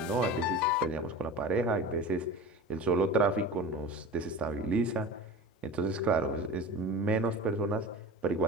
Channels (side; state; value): both; normal; correlation 0.34